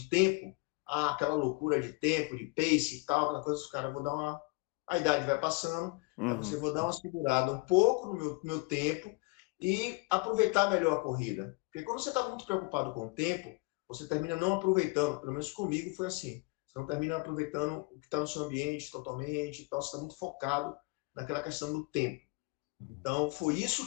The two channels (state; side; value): quieter; right; 28.1 dB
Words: tempo, aquela loucura de tempo, de pace e tal, aquela coisa, os caras, a idade vai passando, aí você vou dar uma segurada um pouco no meu tempo e aproveitar melhor a corrida. Porque quando você está muito preocupado com o tempo, você termina não aproveitando, pelo menos comigo foi assim, você não termina aproveitando o que está no seu ambiente totalmente, então você está muito focado naquela questão do tempo. Então, foi isso